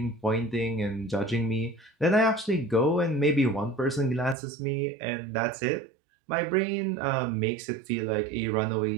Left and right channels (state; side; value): drops out; left; at 4.4 s